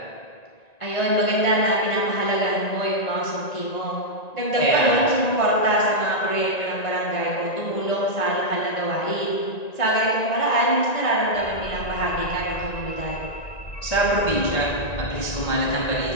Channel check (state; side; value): late; right; 1.9 ms